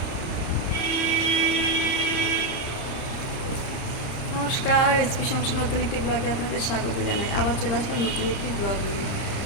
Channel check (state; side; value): late; right; 30 ms